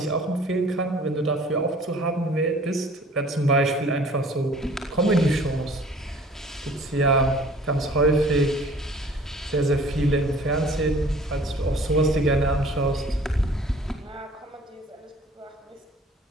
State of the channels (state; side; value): normal; both; correlation 0.51